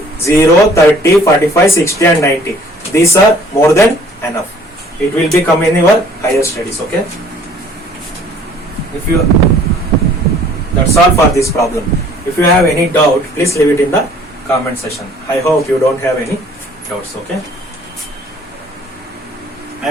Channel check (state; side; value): normal; both; correlation 0.55